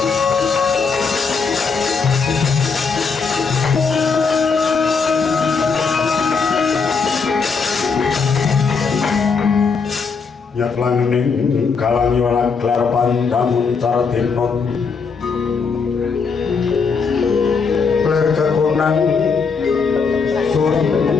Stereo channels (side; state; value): right; quieter; 5.2 dB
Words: Nyatlaning kalangi walang klar pandamun cardinon ler kekunang suring